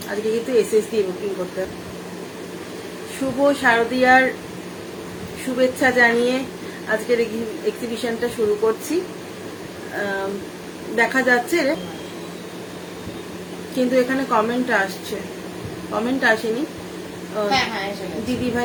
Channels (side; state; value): both; identical; correlation 1.00